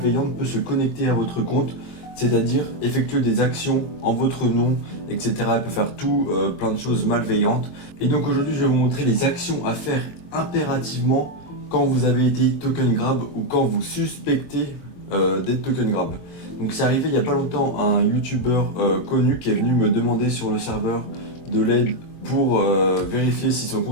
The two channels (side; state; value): right; late; 23 ms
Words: peut se connecter à votre compte, c'est-à-dire effectuer des actions en votre nom, etc. Elle peut faire tout, plein de choses malveillantes. Et donc aujourd'hui, je vais vous montrer les actions à faire impérativement quand vous avez été token grab ou quand vous suspectez d'être token grab. Donc c'est arrivé il n'y a pas longtemps à un youtubeur connu qui est venu me demander sur le serveur de l'aide pour vérifier si son